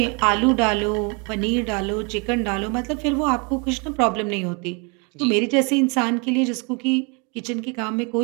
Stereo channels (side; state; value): left; quieter; 32.9 dB